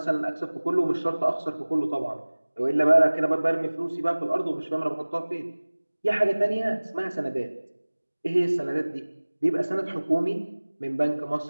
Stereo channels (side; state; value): both; inverted; correlation -1.00